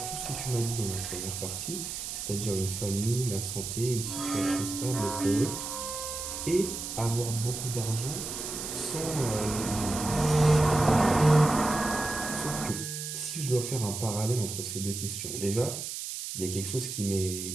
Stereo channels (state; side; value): noise; right; hiss, 6 dB below the sound